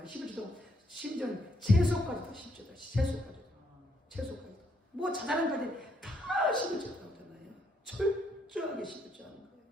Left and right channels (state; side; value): normal; both; correlation 0.73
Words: 11조도 심지어 채소까지도 10조다. 채소까지도. 뭐 자잘한까지 다 11조 나오잖아요. 철저하게 11조 하는